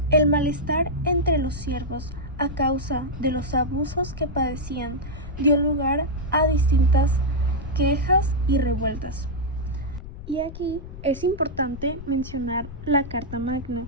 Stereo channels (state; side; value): noise; left; rumble, 12 dB below the sound